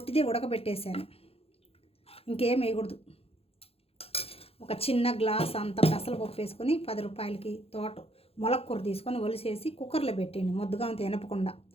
ఉడకబెట్టేశాను. ఇంకేం వేయకూడదు. ఒక చిన్న గ్లాస్ అంత పెసరపప్పు వేసుకొని 10 రూపాయలకి మొలక్కూర తీసుకొని ఒలిసేసి కుక్కర్లో పెట్టండి. ముద్దగా అంత ఎనపకుండా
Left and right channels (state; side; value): late; right; 0.28 ms